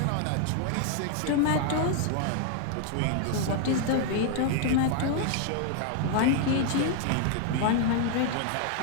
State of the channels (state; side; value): different; both; correlation 0.00